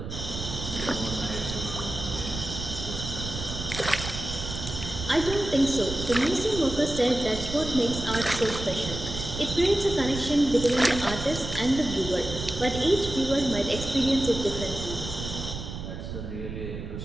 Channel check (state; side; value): noise; right; rumble, 7 dB below the sound